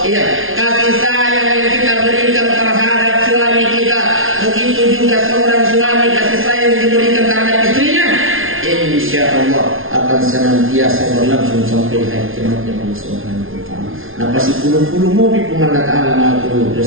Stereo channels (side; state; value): left; late; 0.59 ms